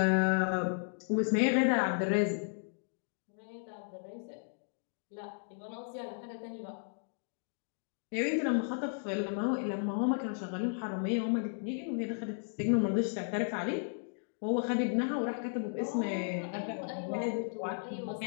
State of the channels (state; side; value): silent; right; digital silence